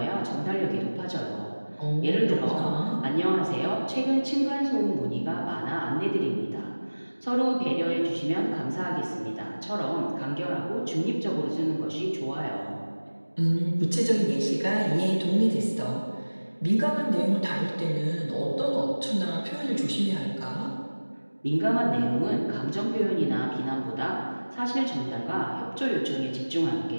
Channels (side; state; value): both; inverted; correlation -1.00